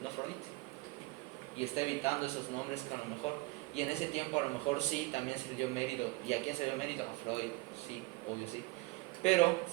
No Freud. Y está evitando esos nombres que a lo mejor, y en ese tiempo a lo mejor sí, también se le dio mérito. ¿Y a quién se le dio mérito? A Freud, sí, obvio sí. Pero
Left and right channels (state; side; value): quieter; left; 22.3 dB